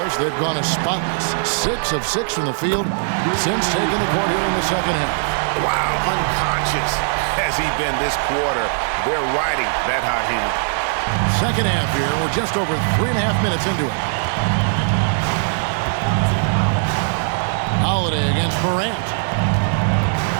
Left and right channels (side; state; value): left; silent; digital silence